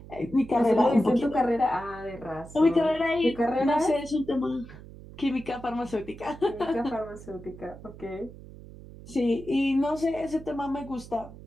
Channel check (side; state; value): right; noise; hum, 17 dB below the sound